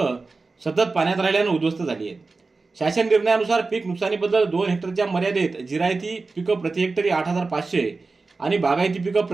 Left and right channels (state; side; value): quieter; left; 3.9 dB